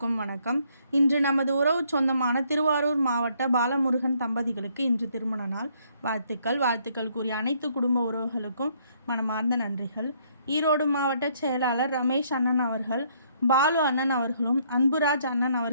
வணக்கம். இன்று நமது உறவு சொந்தமான திருவாரூர் மாவட்ட பாலமுருகன் தம்பதிகளுக்கு இன்று திருமண நாள். வாழ்த்துக்கள் கூறிய அனைத்து குடும்ப உறவுகளுக்கும் மனமார்ந்த நன்றிகள். ஈரோடு மாவட்ட செயலாளர் ரமேஷ் அண்ணன் அவர்கள் பாலு அண்ணன் அவர்களும் அன்புராஜ் அண்ணன்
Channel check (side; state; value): both; inverted; correlation -0.68